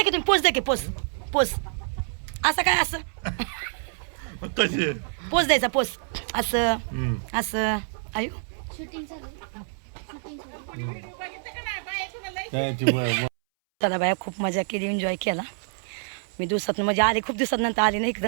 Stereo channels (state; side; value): silent; left; 60 dB below the other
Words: की तुम्ही पोच द्या की पोच असं काय असं कसे पोच द्यायचा पोच असं हम्म. असं आयु काय ती चला बाया खूप मजा केली एन्जॉय केला मी दिवसात म्हणजे आले खूप दिवसानंतर आले ना